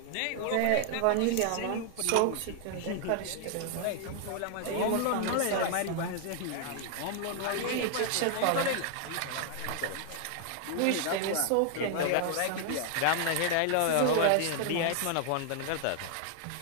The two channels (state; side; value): different; both; correlation 0.00